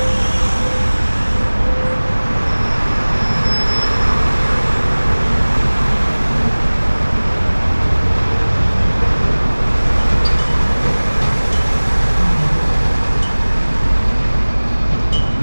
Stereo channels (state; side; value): inverted; both; correlation -1.00